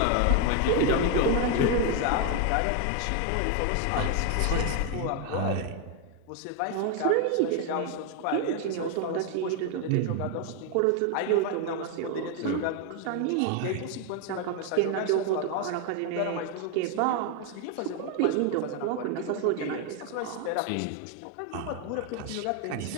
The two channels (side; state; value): both; different; correlation 0.01